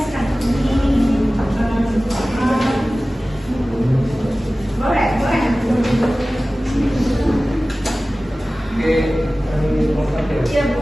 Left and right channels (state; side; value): normal; both; correlation 0.97